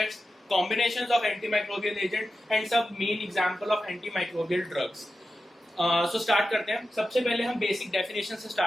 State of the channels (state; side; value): normal; both; correlation 0.92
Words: combinations of antimicrobial agent and some main example of antimicrobial drugs। so start करते हैं। सबसे पहले हम बेसिक डेफिनेशन से